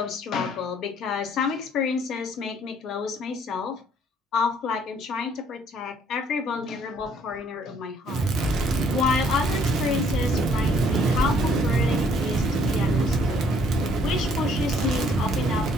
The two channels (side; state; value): both; normal; correlation 0.63